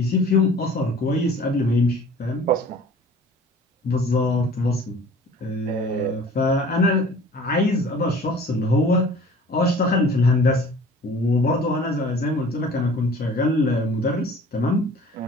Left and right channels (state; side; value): normal; both; correlation 0.47